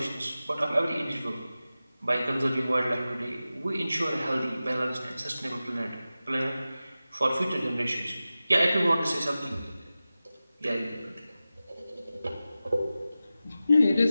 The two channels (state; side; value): inverted; both; correlation -0.95